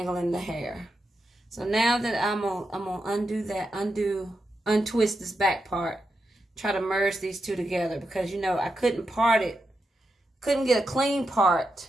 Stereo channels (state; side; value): normal; both; correlation 0.87